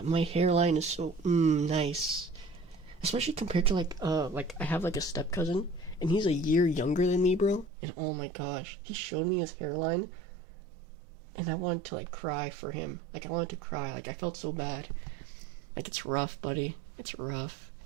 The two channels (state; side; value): drops out; left; at 7.7 s